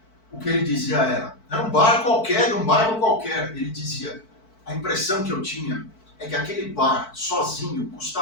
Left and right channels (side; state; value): right; late; 4.5 ms